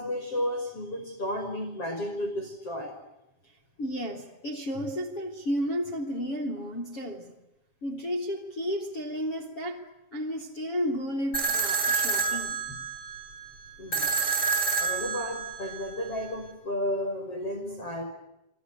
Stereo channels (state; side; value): late; right; 7.4 ms